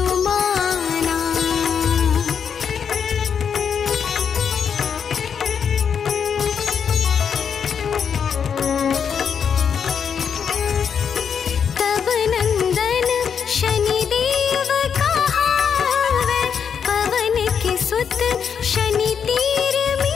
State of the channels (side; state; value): right; quieter; 7.2 dB